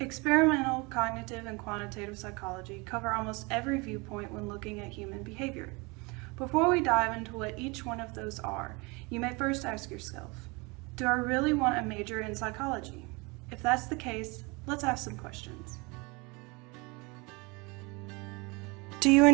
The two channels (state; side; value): quieter; left; 27.3 dB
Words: cognitive, and quantitative psychology cover almost every viewpoint when looking at human behavior. Before we dive into what each one of those are, you may first ask yourself, do I really want a major in psychology? If that's the case, let's ask some questions. Do you